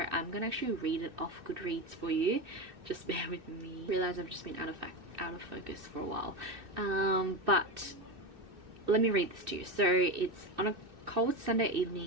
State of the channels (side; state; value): left; late; 2.6 ms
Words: I'm gonna actually read it off Goodreads for you. Just bear with me. I realize I've just been out of focus for a while, but let me read this to you. So it's on a cold Sunday